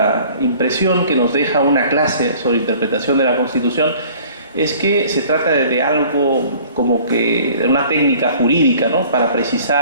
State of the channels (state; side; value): inverted; both; correlation -0.50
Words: impresión que nos deja una clase sobre interpretación de la Constitución es que se trata de algo como que de una técnica jurídica, ¿no?, para